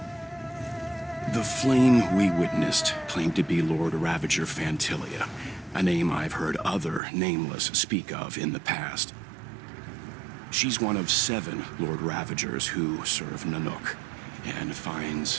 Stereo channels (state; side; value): drops out; left; at 7.0 s